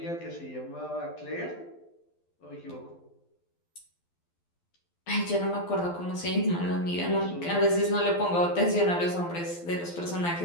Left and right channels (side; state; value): right; late; 12 ms